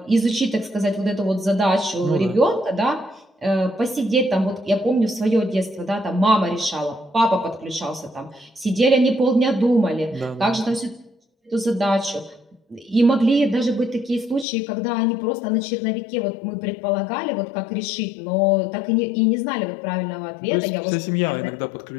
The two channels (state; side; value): drops out; right; at 14.5 s